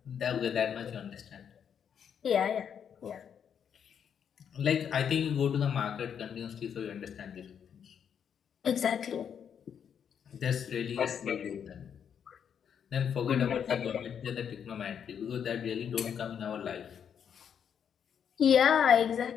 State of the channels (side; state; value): right; quieter; 8.0 dB